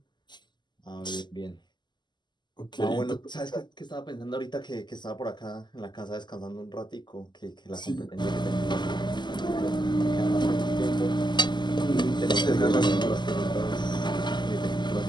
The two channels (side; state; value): right; late; 0.21 ms